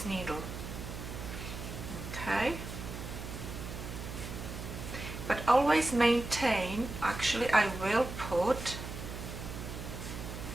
needle. Okay, but always maintain, actually I will put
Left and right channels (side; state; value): right; noise; hum, 8 dB below the sound